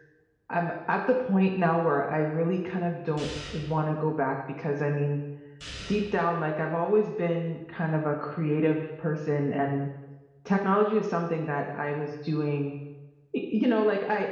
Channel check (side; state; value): both; identical; correlation 1.00